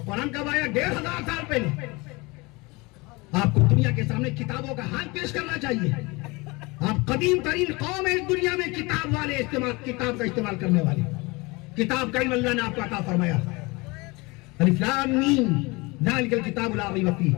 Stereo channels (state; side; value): quieter; right; 25.1 dB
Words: قرآن کب آیا؟ 1500 سال پہلے۔ آپ کو دنیا کے سامنے کتابوں کا حال پیش کرنا چاہیے۔ آپ قدیم ترین قوم ہے اس دنیا میں کتاب والے، کتاب کا استعمال کرنے والے۔ کتاب کا علم اللہ نے آپ کو عطا فرمایا۔ الف لام میم ذالک الکتاب لا ریب فیہ،